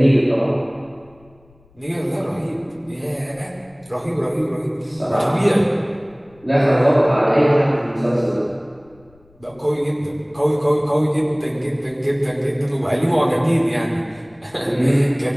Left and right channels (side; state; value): left; noise; rumble, 30 dB below the sound